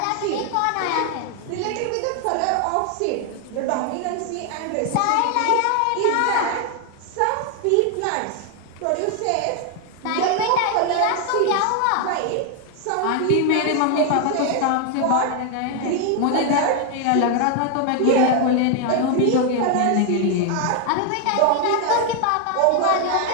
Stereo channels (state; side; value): different; both; correlation 0.00